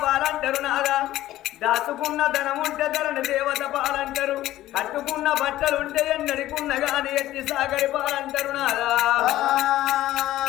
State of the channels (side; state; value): right; quieter; 14.8 dB